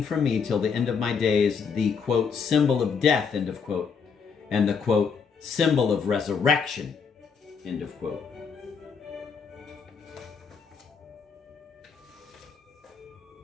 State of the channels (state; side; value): quieter; right; 5.9 dB